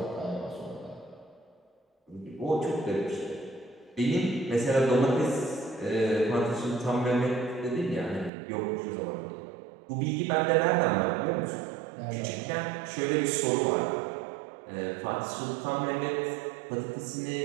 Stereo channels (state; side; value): drops out; left; at 8.3 s